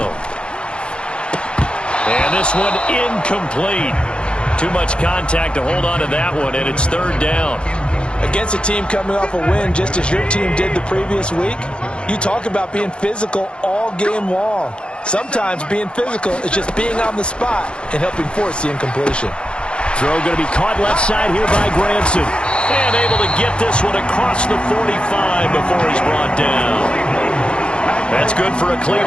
And this one incomplete. Too much contact to hold on to that one, and it's third down. Against a team coming off a win just as your team did the previous week, you talk about being physical all game long. Sometimes being physical is just being on the spot and helping force the incompletion. Throw going to be caught left side here by Granson. And able to get this one across the 45 before he's brought down. That's good for a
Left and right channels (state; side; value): late; right; 0.055 ms